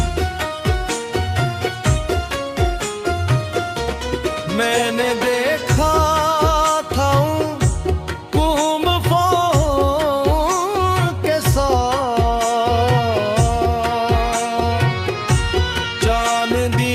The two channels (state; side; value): identical; both; correlation 1.00